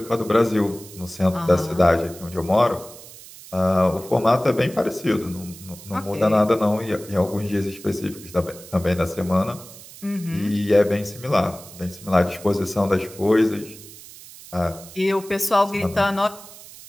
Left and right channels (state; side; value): noise; right; hiss, 18 dB below the sound